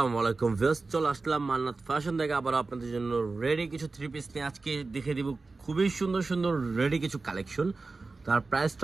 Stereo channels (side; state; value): left; quieter; 3.8 dB